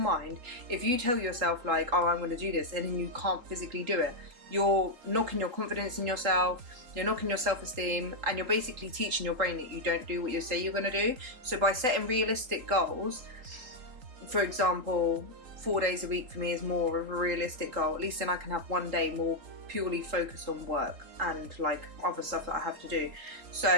if you tell yourself like, oh, I'm going to do this, and then you can't physically do it, you're knocking your confidence in yourself, you're knocking your self-esteem, and you're basically teaching your brain that you don't do what you say you're going to do. So by setting realistic goals, for example, 4 days a week for me is more of a realistic goal. At least then I can have one day more purely focused on work and like other stuff that I have to do.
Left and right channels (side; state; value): left; late; 3.8 ms